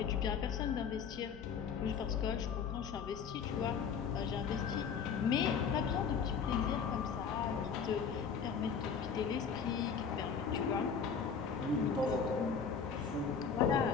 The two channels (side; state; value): right; quieter; 6.4 dB